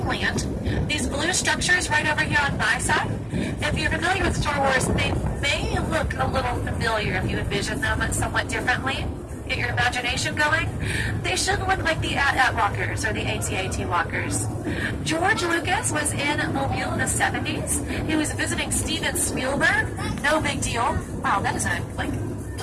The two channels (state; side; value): identical; both; correlation 1.00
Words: land, these blue structures right over here on my side, if you're familiar with Star Wars, they may look a little familiar if you envision them somewhat differently. Get your imagination going. They should look like the AT-AT walkers or the AT-AT walkers. George Lucas was in Mobile in the 70s. He was visiting Steven Spielberg. No big deal. Wow, that is a